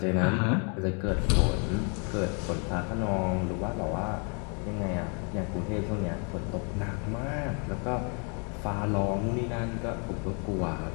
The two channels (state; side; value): quieter; right; 37.1 dB